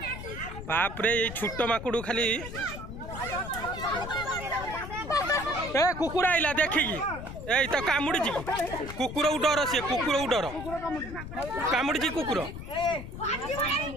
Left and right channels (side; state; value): left; noise; rumble, 10 dB below the sound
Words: बाप रे ये छोट माकुड़ खाली ए कुकुर आइला देखिकी ए तो कामुड़ी कुकुर डर सी कुकुर डर कामुड़ी कुकुर